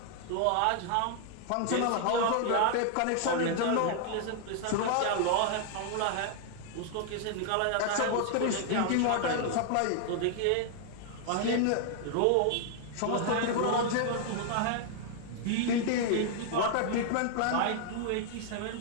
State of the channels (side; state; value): both; different; correlation 0.00